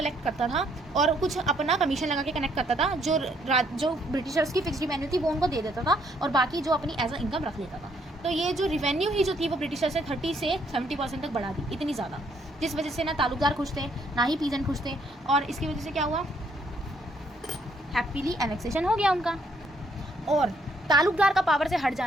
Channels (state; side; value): normal; both; correlation 0.69